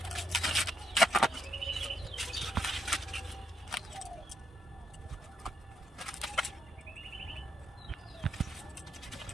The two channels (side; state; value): both; normal; correlation 0.78